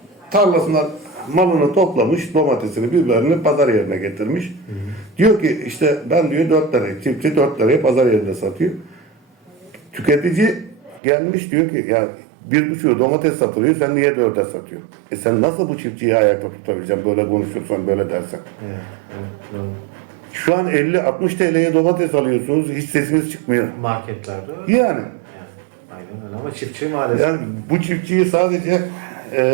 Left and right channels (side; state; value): left; drops out; at 11.0 s